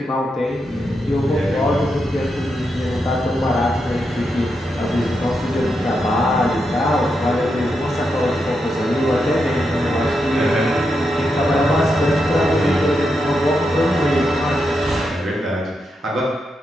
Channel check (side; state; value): both; normal; correlation 0.84